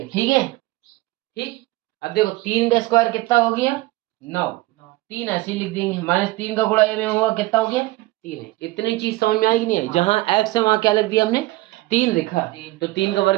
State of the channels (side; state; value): left; quieter; 19.6 dB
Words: ठीक है। ठीक, अब देखो 3 का स्क्वायर कितना हो गया, 9। 3 ऐसे ही लिख देंगे, -3 का गुणा a में हुआ कितना हो गया, 3 है। इतनी चीज समझ में आएगी नहीं आई। जहां x है वहां क्या लिख दिया हमने, 3 लिखा। तो 3 का